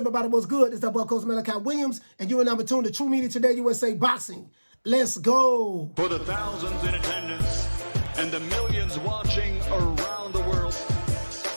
What's good? It's that boy, Coach Malachi Williams, and you are number 2 in the True Media Today USA Boxing. Let's go. For the thousands in attendance and the millions watching around the world,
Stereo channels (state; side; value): inverted; both; correlation -1.00